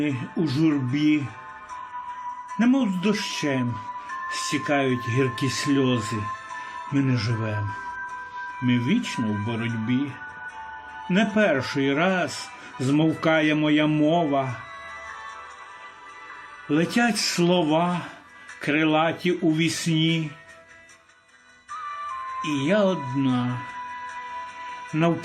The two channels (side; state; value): both; identical; correlation 1.00